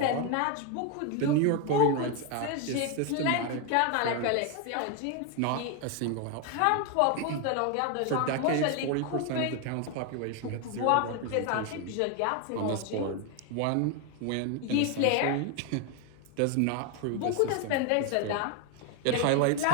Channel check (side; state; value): both; different; correlation 0.01